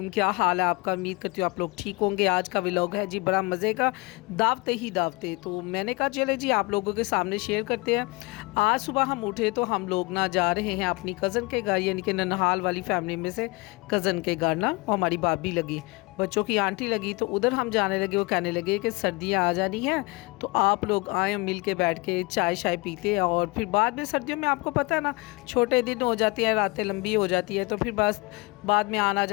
क्या हाल है आपका? उम्मीद करती हूँ आप लोग ठीक होंगे। आज का व्लॉग है जी बड़ा मज़े का, दावते ही दावते। तो मैंने कहा चले जी आप लोगों के सामने शेयर करते हैं। आज सुबह हम उठे तो हम लोग ना जा रहे हैं अपनी कज़न के घर, यानी कि ननहाल वाली फैमिली में से कज़न के घर ना, और हमारी भाभी लगी, बच्चों की आंटी लगी, तो उधर हम जाने लगे। वो कहने लगे कि सर्दियाँ आ जानी हैं तो आप लोग आए, मिल के बैठ के चाय शाय पीते हैं। और फिर बाद में सर्दियों में आपको पता है ना, छोटे दिन हो जाती हैं, रातें लंबी हो जाती है, तो फिर बस बाद में आना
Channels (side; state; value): right; quieter; 25.0 dB